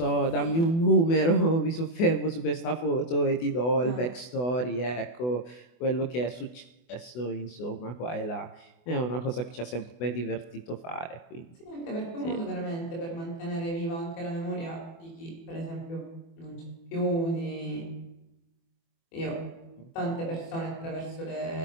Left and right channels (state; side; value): late; right; 24 ms